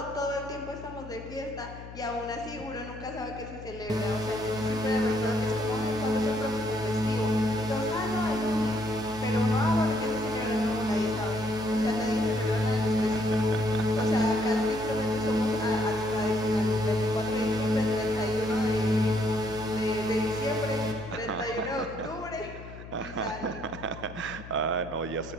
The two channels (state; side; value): noise; left; hum, 14 dB below the sound